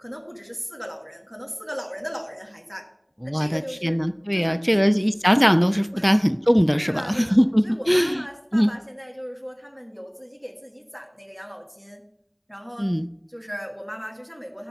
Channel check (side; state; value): both; identical; correlation 1.00